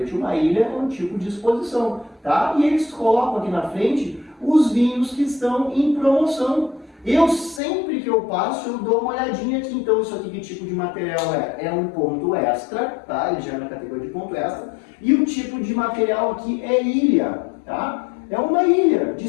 uma ilha é um tipo de exposição, tá? E eles colocam aqui na frente os vinhos que estão em promoção. Eu sempre que eu passo, eu dou uma olhadinha aqui. Então isso aqui, que tipo de material é? É um ponto extra, tá? Ele já é na categoria de ponto extra. E o tipo de material aqui é ilha, tá? É uma ilha de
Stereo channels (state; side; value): drops out; right; at 7.6 s